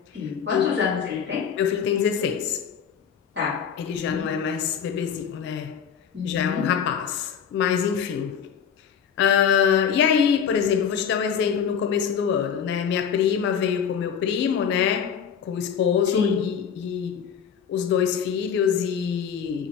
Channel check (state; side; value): quieter; right; 7.6 dB